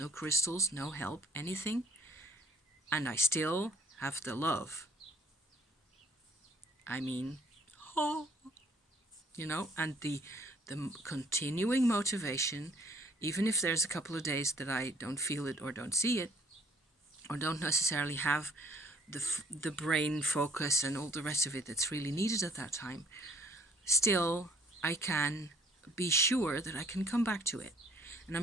crystals, no help, anything. And I still have the love. I mean, and the continuing motivation, even if there's a couple of days that I don't feel it or don't see it, or don't necessarily have the brain focus and all the rest of it that's really needed at that time, still I can be sure that I can come back to it. And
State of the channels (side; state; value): both; normal; correlation 0.59